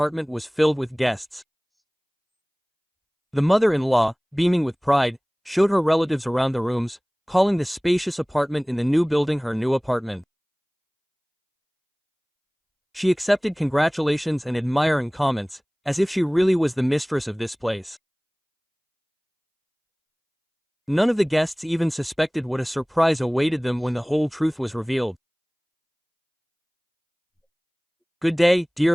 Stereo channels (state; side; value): identical; both; correlation 1.00